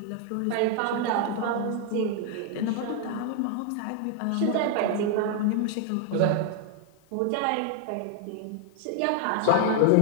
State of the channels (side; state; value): both; different; correlation 0.00